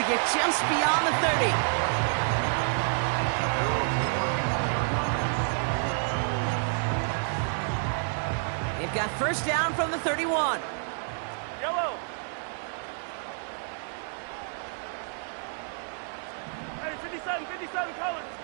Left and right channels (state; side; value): silent; left; 59 dB below the other